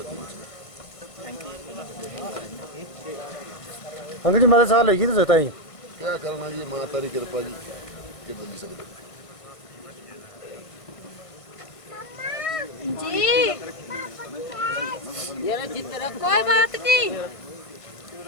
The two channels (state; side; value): late; right; 1.5 ms